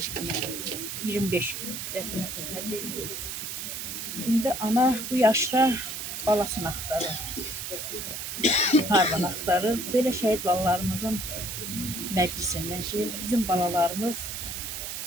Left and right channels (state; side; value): noise; right; hiss, 6 dB below the sound